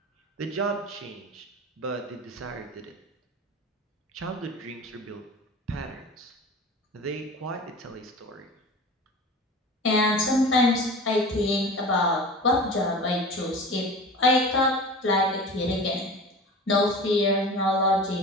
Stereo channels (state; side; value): normal; both; correlation 0.36